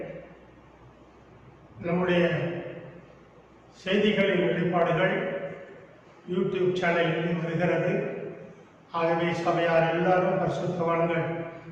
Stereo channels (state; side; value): identical; both; correlation 1.00